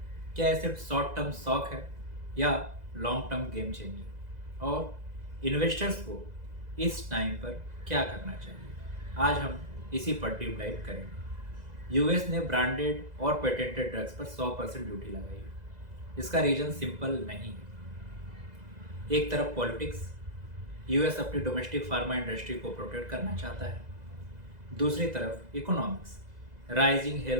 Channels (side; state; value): left; late; 2.0 ms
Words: क्या ये सिर्फ शॉर्ट टर्म शॉक है या लॉन्ग टर्म गेम चेंजर? और इन्वेस्टर्स को इस टाइम पर क्या करना चाहिए? आज हम इसी पर डीप डाइव करेंगे। यूएस ने ब्रांडेड और पेटेंटेड ड्रग्स पर 100% ड्यूटी लगाई है। इसका रीजन सिंपल नहीं है। एक तरफ पॉलिटिक्स, यूएस अपनी डोमेस्टिक फार्मा इंडस्ट्री को प्रोटेक्ट करना चाहता है। दूसरी तरफ economics, rising